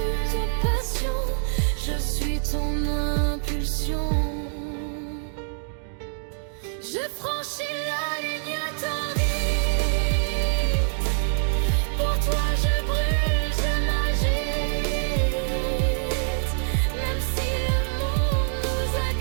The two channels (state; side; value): silent; left; 62 dB below the other